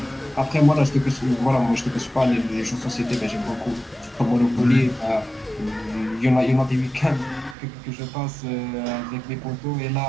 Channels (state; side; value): drops out; left; at 7.6 s